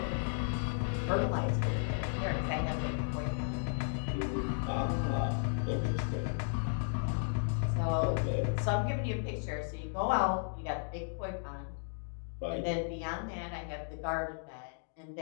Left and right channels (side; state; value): right; silent; digital silence